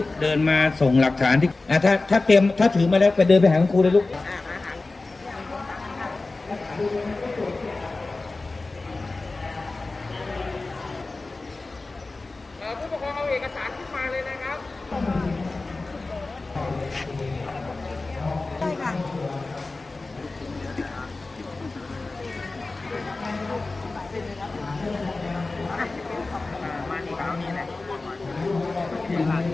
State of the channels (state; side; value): quieter; right; 3.4 dB